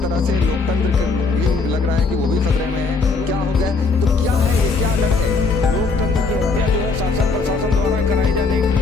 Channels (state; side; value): quieter; right; 4.2 dB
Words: तरह से लोकतंत्र भी लग रहा है कि वो भी खतरे में है। क्या हो गया? तो क्या है ये, क्या डर है? लोकतंत्र की हत्या जो है शासन प्रशासन द्वारा कराई जाने